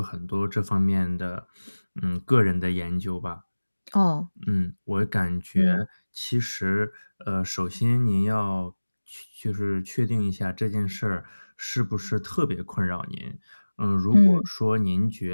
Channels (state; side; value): inverted; both; correlation -1.00